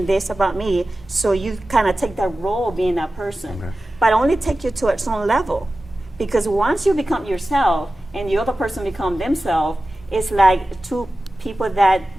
this about me. So you kind of take that role being that person. Okay. But only take you to its own level. Because once you become yourself and the other person become themselves, it's like two people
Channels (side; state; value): both; normal; correlation 0.95